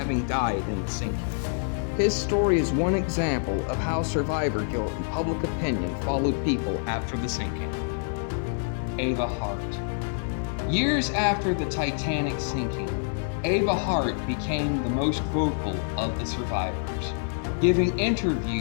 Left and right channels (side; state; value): right; silent; 60 dB below the other